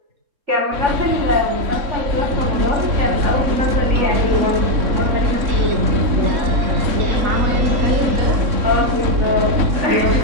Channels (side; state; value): left; late; 3.6 ms